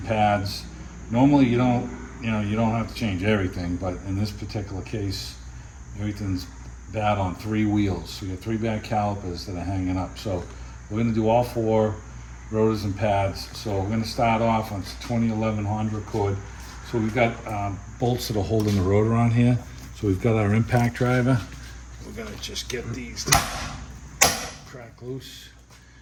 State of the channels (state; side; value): identical; both; correlation 1.00